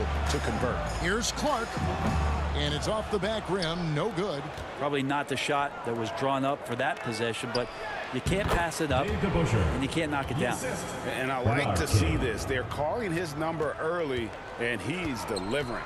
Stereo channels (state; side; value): identical; both; correlation 1.00